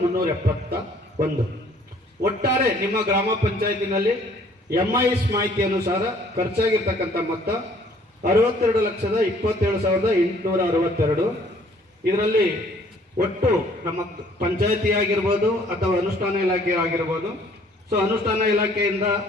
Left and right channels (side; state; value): both; normal; correlation 0.59